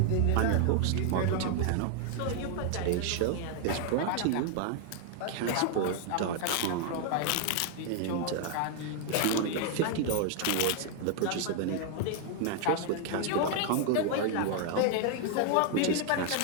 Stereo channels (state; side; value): different; both; correlation 0.00